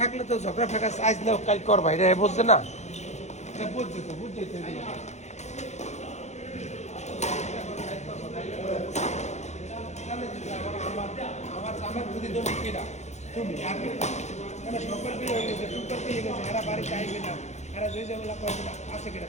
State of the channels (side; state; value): right; late; 0.33 ms